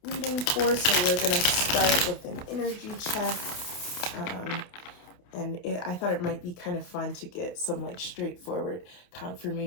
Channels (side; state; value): right; late; 28 ms